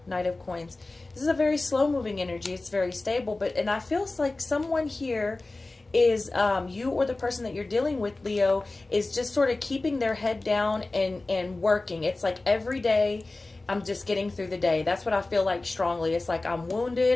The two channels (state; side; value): quieter; right; 3.1 dB